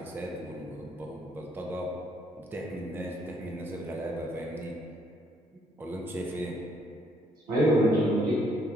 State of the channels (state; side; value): normal; both; correlation 0.69